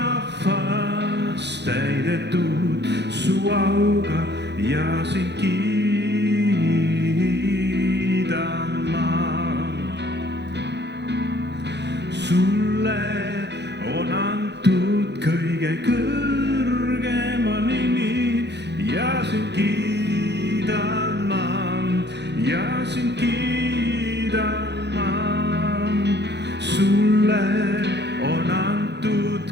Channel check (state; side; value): late; left; 0.50 ms